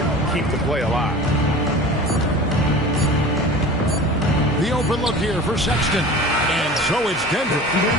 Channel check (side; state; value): both; normal; correlation 0.38